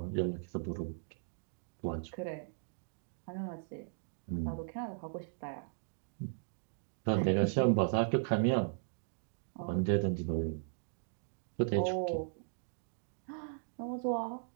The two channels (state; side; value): silent; left; digital silence